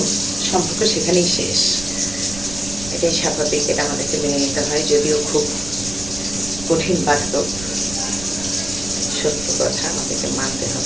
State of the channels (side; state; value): right; noise; rumble, 12 dB below the sound